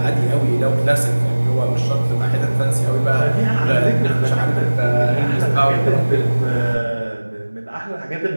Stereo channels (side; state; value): both; inverted; correlation -1.00